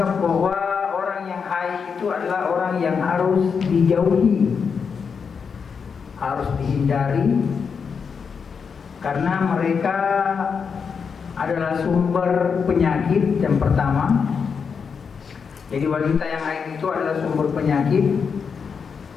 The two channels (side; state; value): right; quieter; 6.0 dB